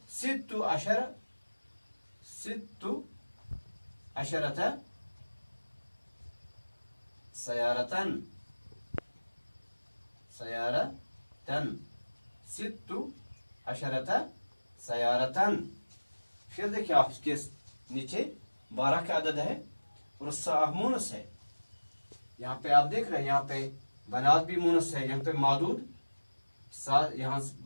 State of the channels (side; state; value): both; inverted; correlation -1.00